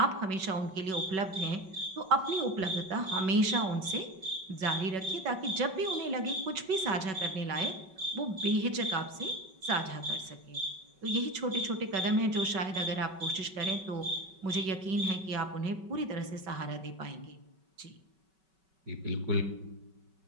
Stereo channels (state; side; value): late; left; 5.3 ms